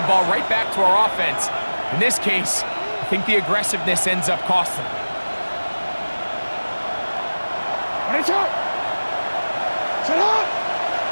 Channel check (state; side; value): inverted; both; correlation -1.00